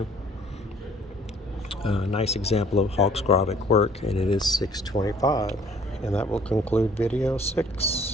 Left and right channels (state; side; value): normal; both; correlation 0.57